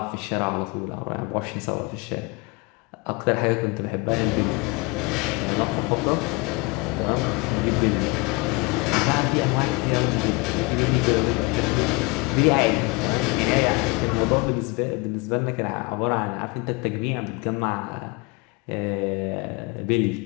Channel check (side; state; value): right; quieter; 26.0 dB